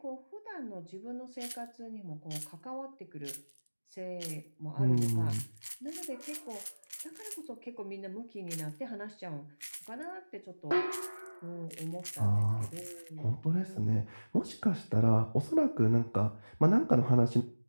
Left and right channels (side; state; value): both; inverted; correlation -1.00